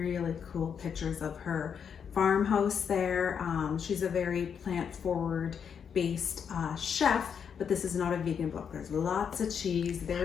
cool pictures of her farmhouse there. She's a very plant-forward based chef, but this is not a vegan book. There's lots of cheese,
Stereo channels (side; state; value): right; quieter; 7.2 dB